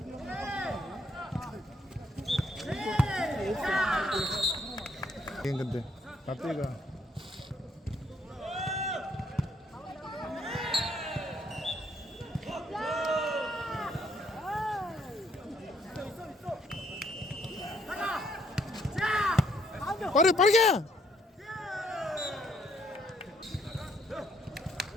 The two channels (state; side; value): normal; both; correlation 0.69